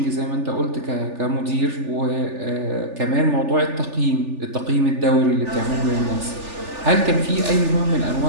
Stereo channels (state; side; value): late; left; 3.4 ms